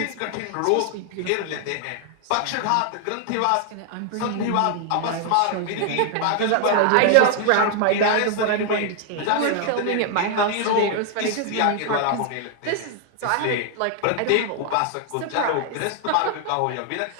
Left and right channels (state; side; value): different; both; correlation 0.00